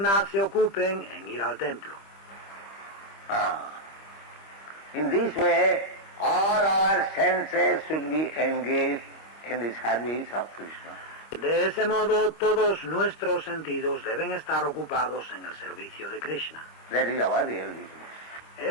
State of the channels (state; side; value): late; right; 25 ms